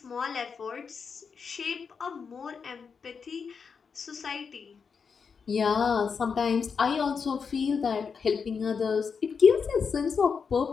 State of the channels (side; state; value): right; quieter; 5.8 dB